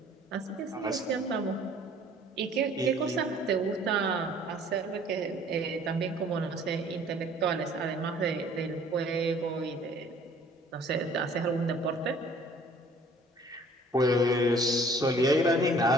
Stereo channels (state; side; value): normal; both; correlation 0.54